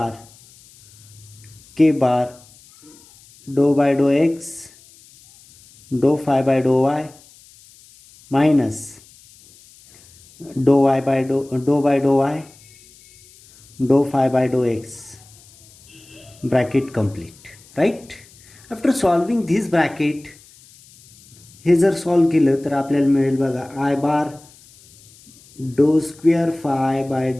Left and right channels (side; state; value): left; noise; hiss, 26 dB below the sound